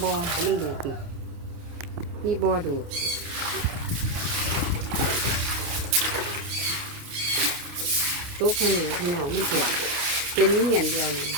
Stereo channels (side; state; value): left; late; 29 ms